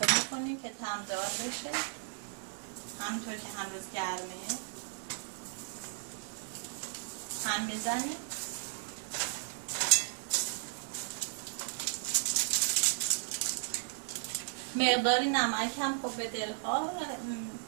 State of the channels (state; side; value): silent; left; 54 dB below the other